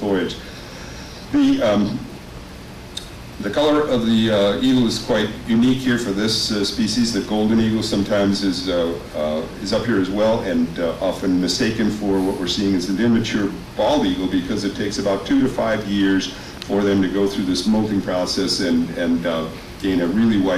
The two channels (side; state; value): both; identical; correlation 1.00